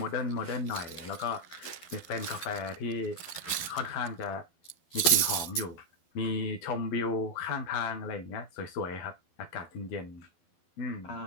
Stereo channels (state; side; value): late; right; 12 ms